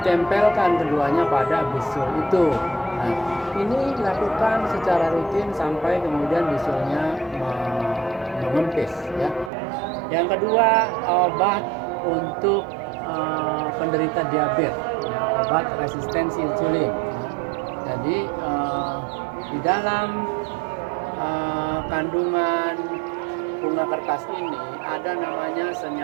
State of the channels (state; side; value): drops out; left; at 9.5 s